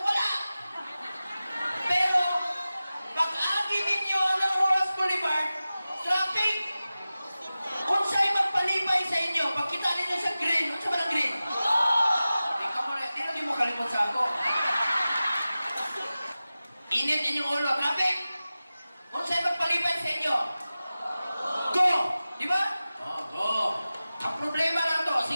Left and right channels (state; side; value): inverted; both; correlation -0.96